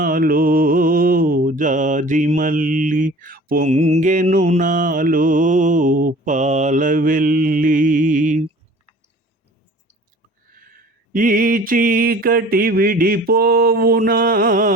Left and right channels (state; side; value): normal; both; correlation 0.46